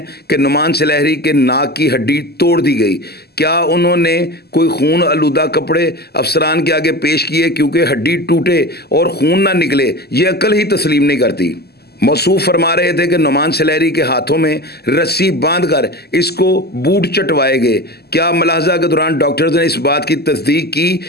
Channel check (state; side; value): late; right; 0.46 ms